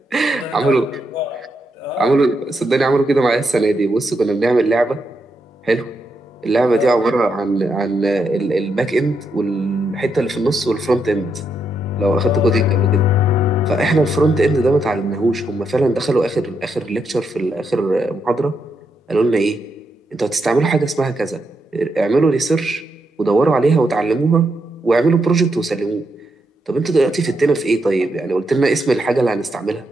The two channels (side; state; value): both; normal; correlation 0.81